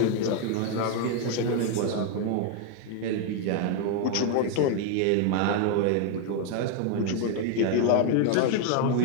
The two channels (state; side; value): different; both; correlation 0.01